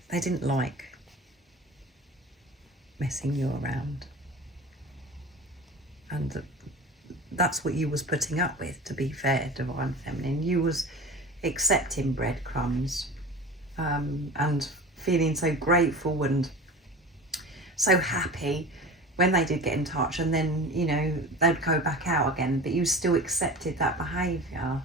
They didn't like messing you around. And that's what you was putting up with, to be fair, Divine Feminine. You was accepting breadcrumbs and feeling so grateful and so happy when they did get in touch, and then, you know, they'd go back out again, but you still accepted that behaviour.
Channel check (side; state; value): both; normal; correlation 0.35